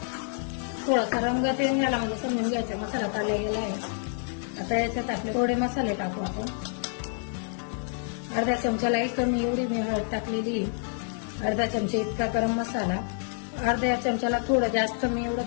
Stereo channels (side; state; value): right; silent; 59 dB below the other